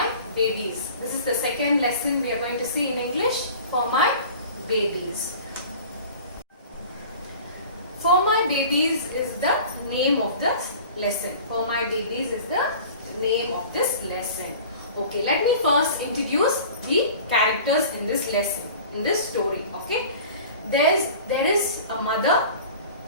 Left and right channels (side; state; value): both; inverted; correlation -0.42